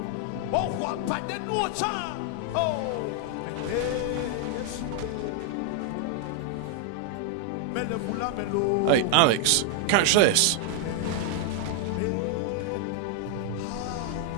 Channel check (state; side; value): different; both; correlation 0.00